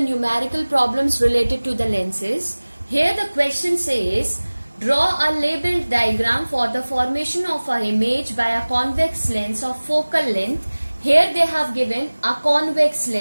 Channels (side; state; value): both; inverted; correlation -1.00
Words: numerical problems related to the lenses. Here the question says, draw a labeled diagram for the formation of an image by a convex lens of focal length. Here they have given a convex